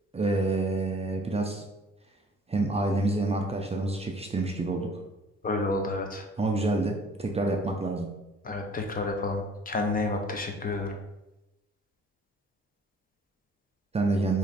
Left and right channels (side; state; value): both; normal; correlation 0.55